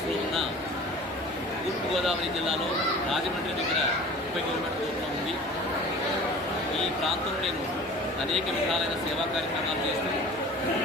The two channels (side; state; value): both; normal; correlation 0.42